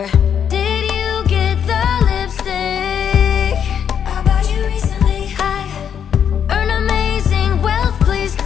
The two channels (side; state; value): right; quieter; 8.3 dB